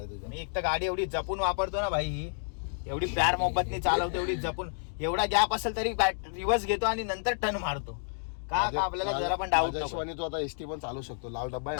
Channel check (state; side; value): silent; right; digital silence